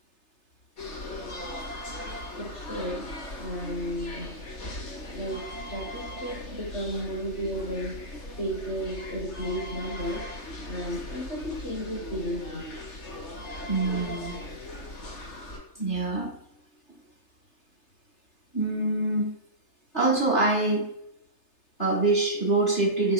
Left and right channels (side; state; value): right; late; 3.3 ms